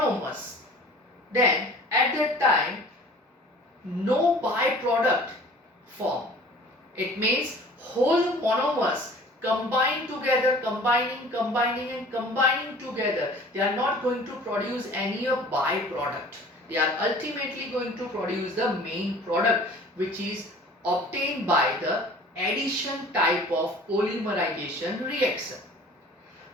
then at that time no byproduct form. It means whole monomers combine together, combining together. They are not going to produce any byproduct. They are ultimately going to produce the main product, which is obtained by the addition type of polymerization reaction.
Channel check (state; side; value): normal; both; correlation 0.47